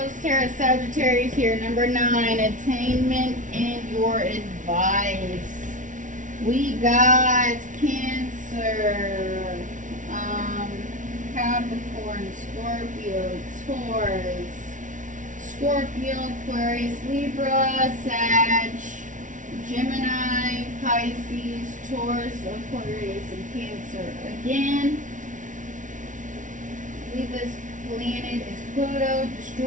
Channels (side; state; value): left; late; 0.37 ms